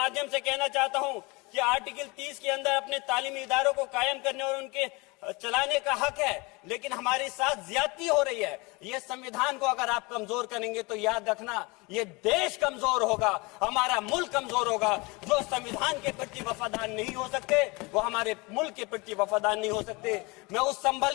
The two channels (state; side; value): quieter; right; 26.3 dB